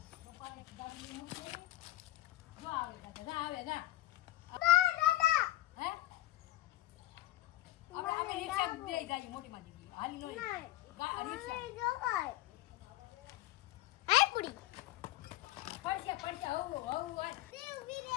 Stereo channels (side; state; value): right; quieter; 16.3 dB